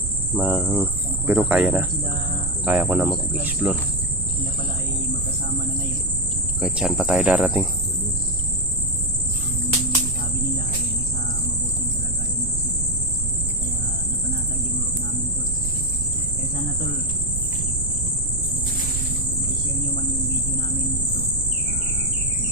Pero kaya na. Kaya ko na mag-explore. Sila pala ay magkasama na ngayon. Kahit saan pa tayo darating. Sabi nila ay nasa mabuting kalagayan daw sila. Kaya napanatag yung loob namin tol. Kaya sana tol, kung i-share nyo man yung video namin ito sa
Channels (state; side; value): noise; right; rumble, 4 dB below the sound